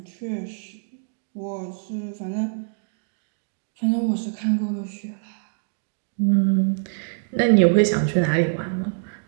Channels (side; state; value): left; silent; digital silence